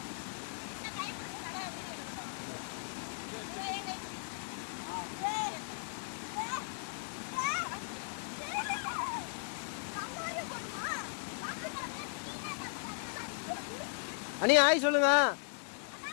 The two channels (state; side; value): silent; right; digital silence